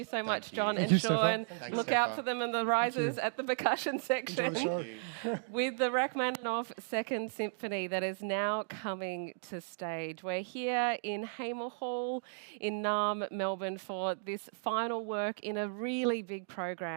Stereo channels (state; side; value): silent; left; digital silence